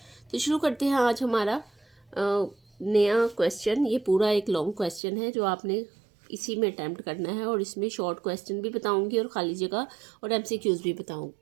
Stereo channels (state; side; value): drops out; left; at 5.0 s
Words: تو شروع کرتے ہیں آج ہمارا نیا کویسچن. یہ پورا ایک لانگ کویسچن ہے جو آپ نے اسی میں اٹیمپٹ کرنا ہے، اور اس میں شارٹ کویسچن بھی بتاؤں گی اور خالی جگہ اور ایم سی کیوز بھی بتاؤں